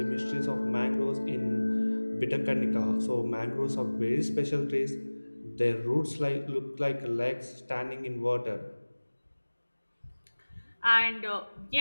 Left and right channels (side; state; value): both; inverted; correlation -1.00